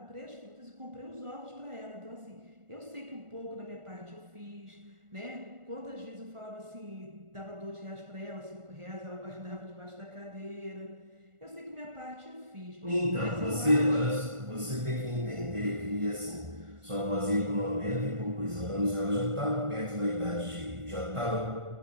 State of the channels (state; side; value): late; left; 1.4 ms